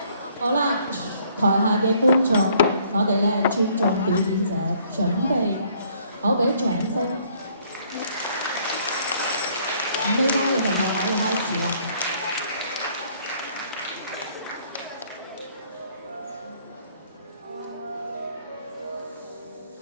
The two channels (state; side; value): inverted; both; correlation -0.63